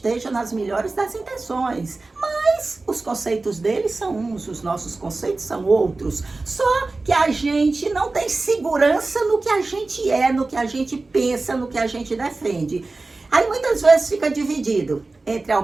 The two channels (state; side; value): quieter; left; 3.4 dB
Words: nas melhores das intenções. Mas os conceitos dele são uns, os nossos conceitos são outros. Só que a gente não tem segurança no que a gente é, no que a gente pensa, no que a gente defende. Aí muitas vezes fica dividido entre a